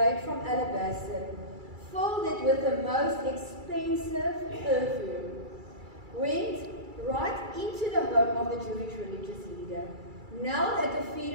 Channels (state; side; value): late; left; 2.3 ms